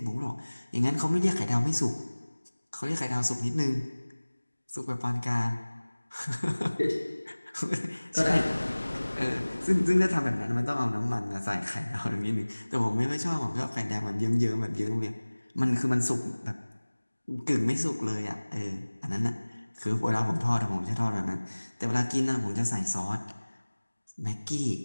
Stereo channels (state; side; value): inverted; both; correlation -1.00